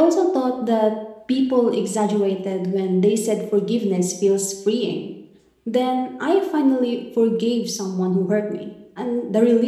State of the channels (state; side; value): identical; both; correlation 1.00